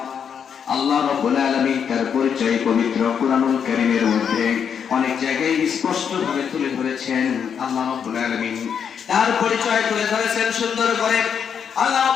আল্লাহ রাব্বুল আলামিন তার পরিচয় পবিত্র কুরআনুল কারীমের মধ্যে অনেক জায়গায় স্পষ্টভাবে তুলে ধরেছেন। আল্লাহ রাব্বুল আলামিন তার পরিচয় তুলে ধরেছেন সুন্দর করে। আল্লাহ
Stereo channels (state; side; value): quieter; right; 7.5 dB